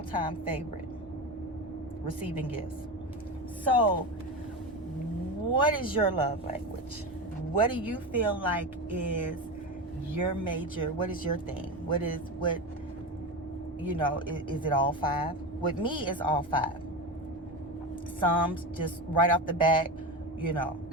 favorite, receiving gifts. So, what is your love language? What do you feel like is your major? What is your thing? Is it all 5? With me, it's all 5. Some just right off the bat,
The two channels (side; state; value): both; normal; correlation 0.21